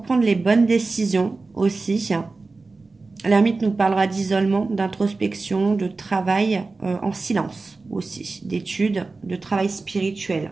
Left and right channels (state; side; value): quieter; left; 3.7 dB